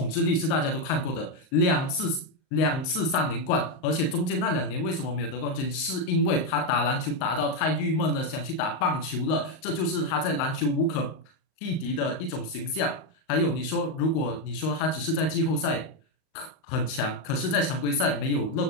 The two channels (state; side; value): late; right; 38 ms